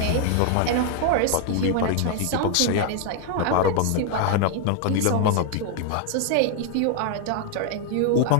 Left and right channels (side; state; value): both; different; correlation 0.00